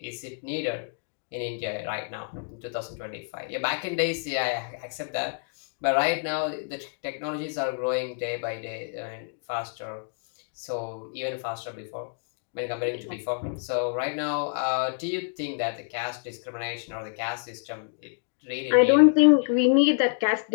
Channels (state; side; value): silent; right; 59 dB below the other